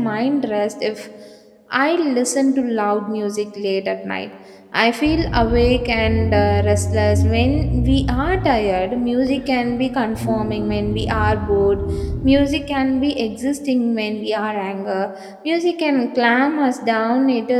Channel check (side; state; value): both; identical; correlation 1.00